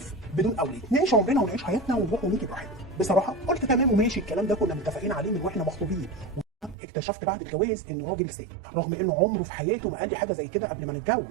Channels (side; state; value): left; drops out; at 6.8 s